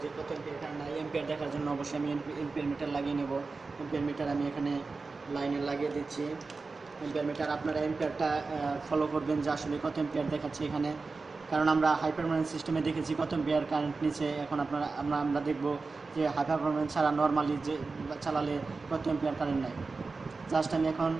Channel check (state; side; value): quieter; left; 4.1 dB